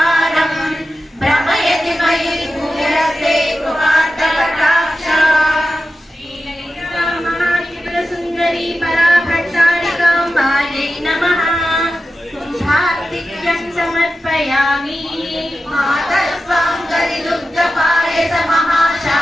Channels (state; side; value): normal; both; correlation 0.92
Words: भ्रमयति मयि भूयसे कृपार्थकटाक्षा श्रीललितामहात्रिपुरसुन्दरी पराभट्टारिकाम्बायै नमः कुम्भार्तिक्यं समर्पयामि मातस्वां कलिदुग्धपायस